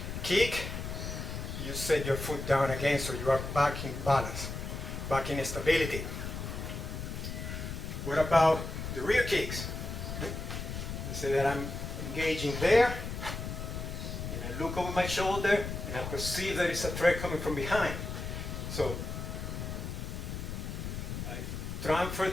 kick, you set your foot down again so you are back in balance, back in stability. What about the rear kicks? Let's say that I'm engaging there, and I look over my shoulder, and I perceive there is a threat coming from behind. So I transfer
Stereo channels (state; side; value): noise; left; rumble, 6 dB below the sound